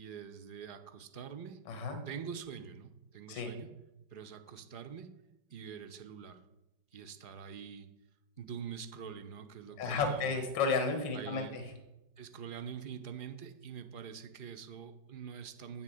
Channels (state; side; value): late; right; 4.8 ms